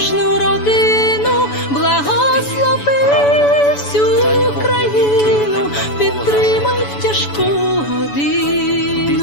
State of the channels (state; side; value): late; right; 7.0 ms